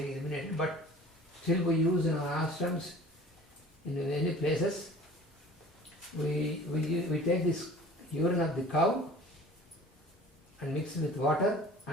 eliminated, but still we use in our ashrams, in many places. We take this urine of the cow and mix it with water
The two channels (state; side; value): normal; both; correlation 0.45